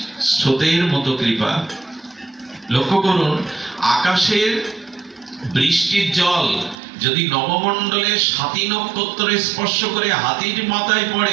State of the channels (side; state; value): left; drops out; at 6.8 s